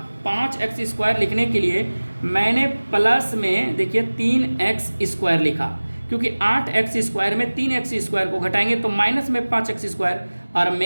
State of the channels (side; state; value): both; inverted; correlation -1.00